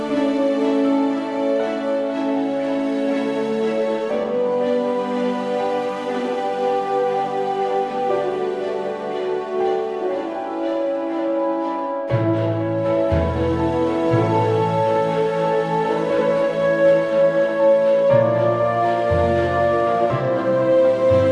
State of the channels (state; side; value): identical; both; correlation 1.00